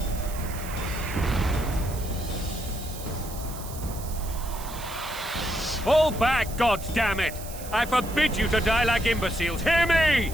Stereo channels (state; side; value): noise; right; hiss, 14 dB below the sound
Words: Fall back, goddammit! I forbid you to die like imbeciles. Hear me!